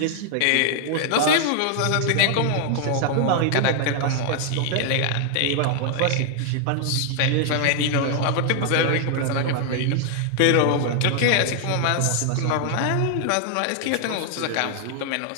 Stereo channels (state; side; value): different; both; correlation 0.00